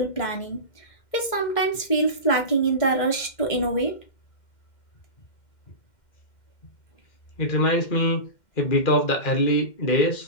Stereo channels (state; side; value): late; right; 2.1 ms